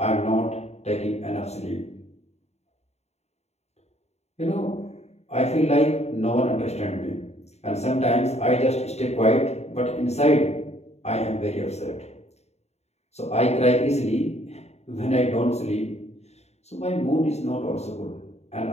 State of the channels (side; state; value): right; late; 0.31 ms